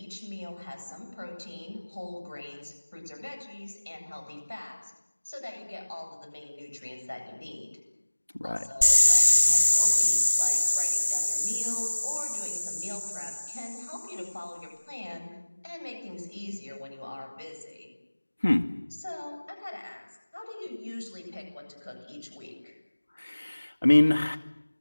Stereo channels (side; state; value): both; inverted; correlation -1.00